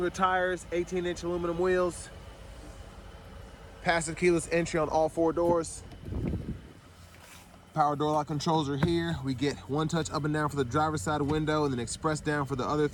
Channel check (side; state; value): both; identical; correlation 1.00